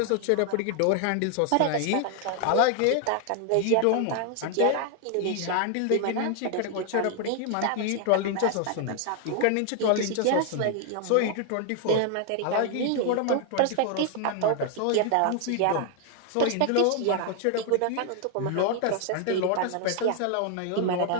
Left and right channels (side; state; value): both; different; correlation 0.00